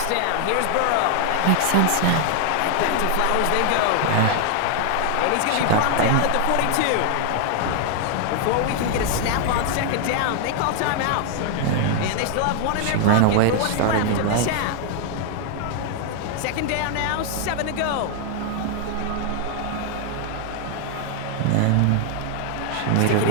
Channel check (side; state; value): both; different; correlation 0.00